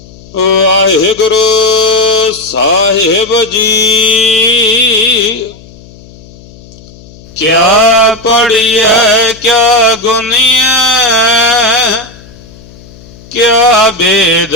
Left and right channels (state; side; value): noise; left; hum, 22 dB below the sound